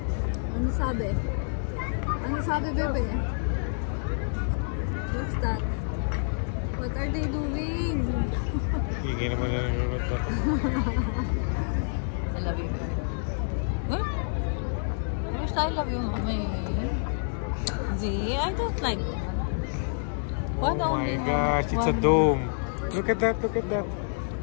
Ano sabi? Ano sabi, bebe? What's that? What are they doing? Hindi naman na nanonood na. I love you. Huh? I love you, mommy. Z, I don't like that. Oh my gosh, it's a dome. Look at that, look at that.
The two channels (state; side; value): silent; right; digital silence